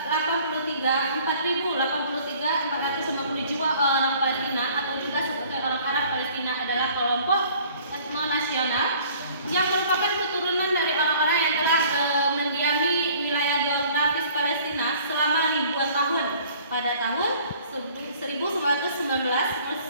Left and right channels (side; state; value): both; inverted; correlation -0.53